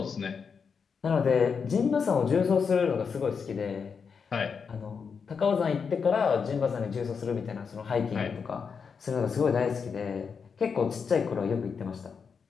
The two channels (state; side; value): quieter; right; 6.0 dB